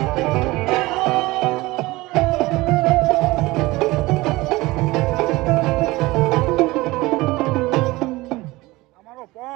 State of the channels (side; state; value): left; quieter; 20.5 dB